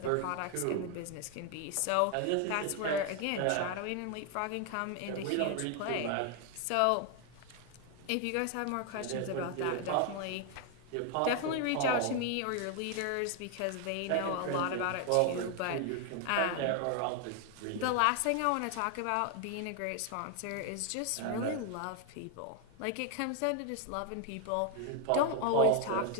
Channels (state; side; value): different; both; correlation 0.00